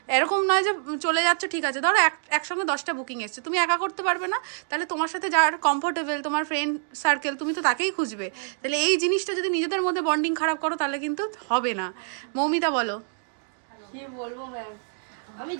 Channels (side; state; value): left; silent; digital silence